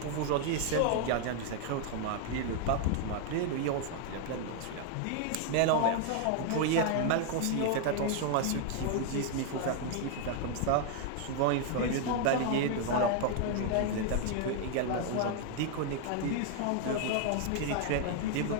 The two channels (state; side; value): different; both; correlation 0.00